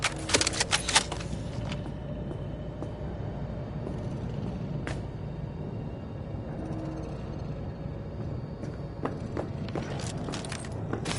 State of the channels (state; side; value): identical; both; correlation 1.00